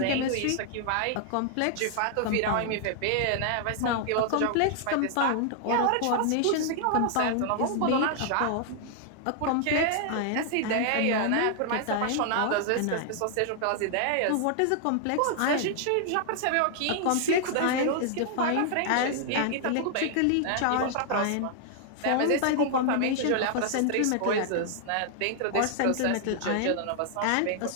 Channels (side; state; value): both; different; correlation 0.00